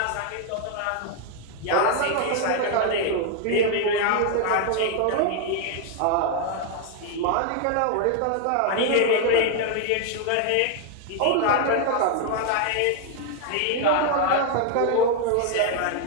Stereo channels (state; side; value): different; both; correlation 0.00